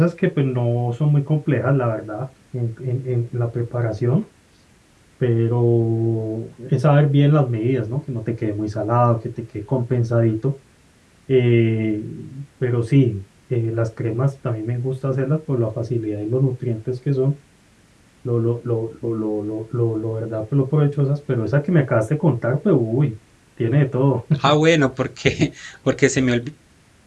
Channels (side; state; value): both; identical; correlation 1.00